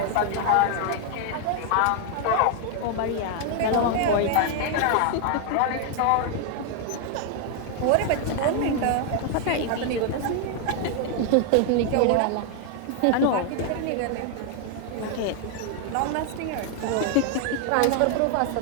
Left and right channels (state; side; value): different; both; correlation 0.00